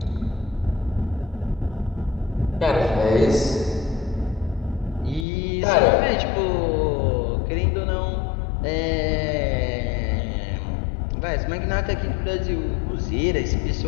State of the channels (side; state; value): right; drops out; at 5.2 s